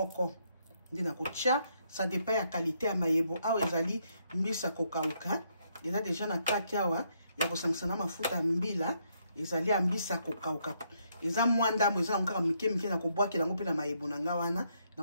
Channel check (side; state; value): both; inverted; correlation -0.74